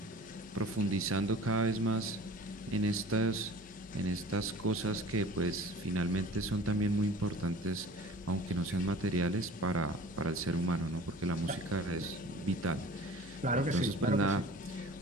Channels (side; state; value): left; noise; hum, 22 dB below the sound